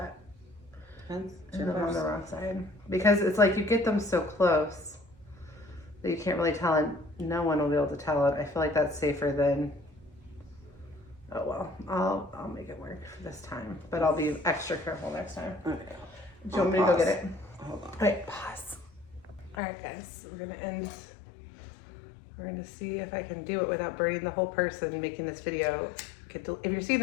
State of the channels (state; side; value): drops out; right; at 19.6 s